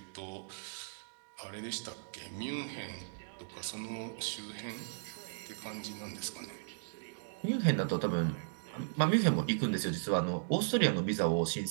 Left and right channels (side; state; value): left; silent; digital silence